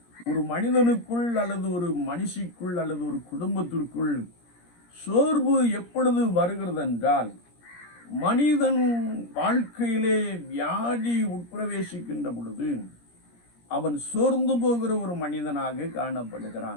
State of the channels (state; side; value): late; right; 17 ms